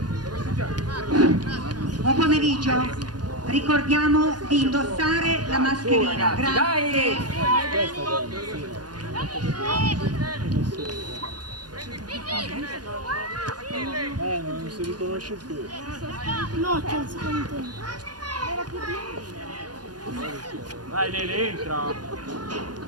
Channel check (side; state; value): left; late; 0.69 ms